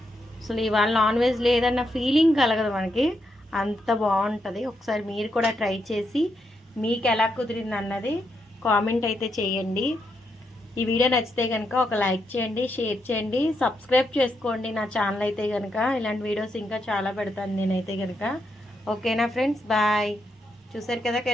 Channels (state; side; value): normal; both; correlation 0.81